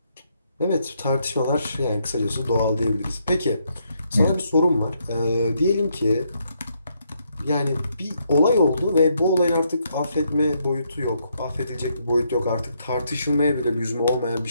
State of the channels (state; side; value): inverted; both; correlation -0.76